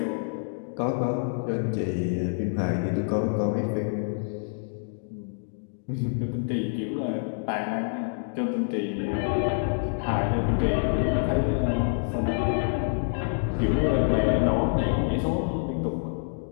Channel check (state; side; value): silent; right; digital silence